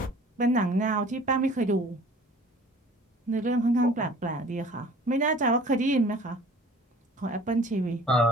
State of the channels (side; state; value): both; normal; correlation 0.48